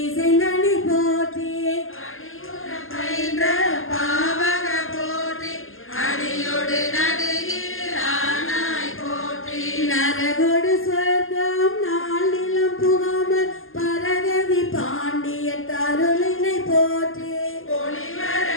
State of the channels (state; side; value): late; right; 0.60 ms